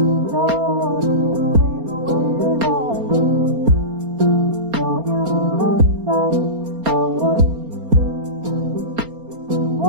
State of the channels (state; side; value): late; left; 4.3 ms